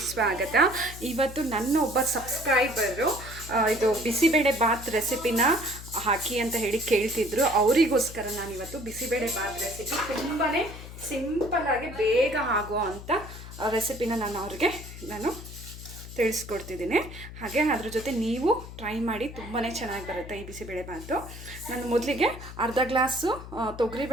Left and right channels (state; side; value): noise; left; hum, 13 dB below the sound